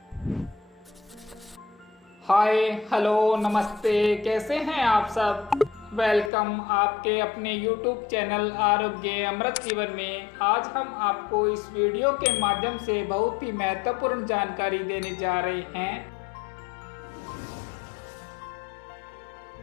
hello नमस्ते, कैसे हैं आप सब। वेलकम आपके अपने YouTube चैनल आरोग्य अमृत जीवन में। आज हम आपको इस वीडियो के माध्यम से बहुत ही महत्वपूर्ण जानकारी देने जा रहे हैं। मेथी के लाडू जरूर खाइए,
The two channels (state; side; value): drops out; right; at 6.3 s